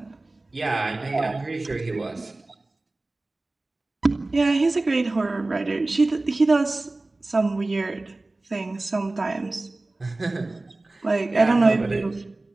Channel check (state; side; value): quieter; left; 3.0 dB